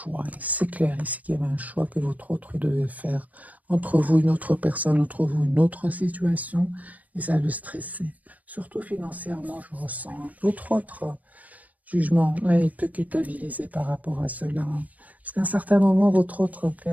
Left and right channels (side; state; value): left; late; 0.076 ms